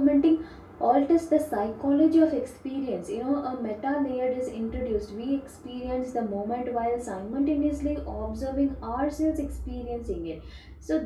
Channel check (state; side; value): identical; both; correlation 1.00